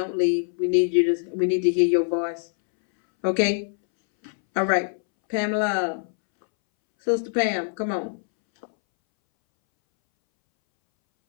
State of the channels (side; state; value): right; silent; 63 dB below the other